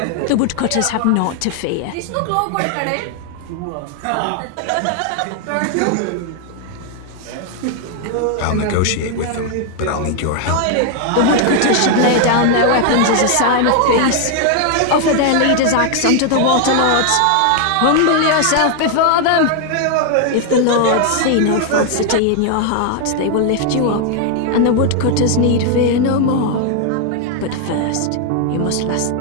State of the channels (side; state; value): both; different; correlation 0.00